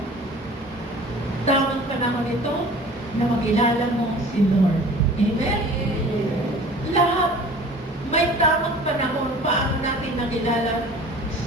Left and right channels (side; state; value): both; normal; correlation 0.45